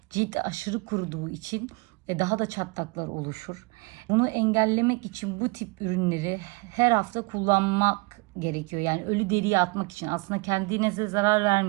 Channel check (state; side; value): quieter; left; 27.0 dB